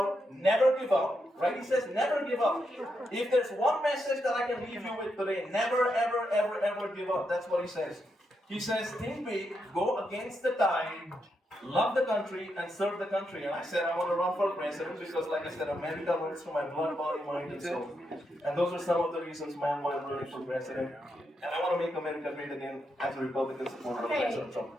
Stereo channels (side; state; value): both; normal; correlation 0.83